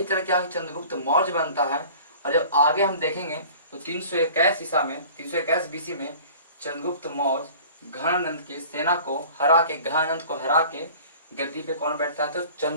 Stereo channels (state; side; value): inverted; both; correlation -0.45